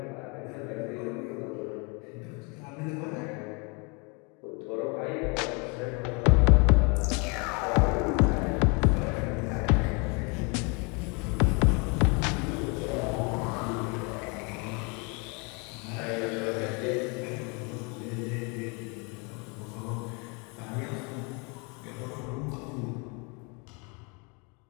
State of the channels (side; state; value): right; quieter; 32.1 dB